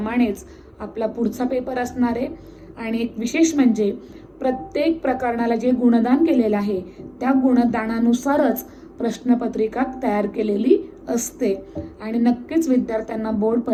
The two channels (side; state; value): both; identical; correlation 1.00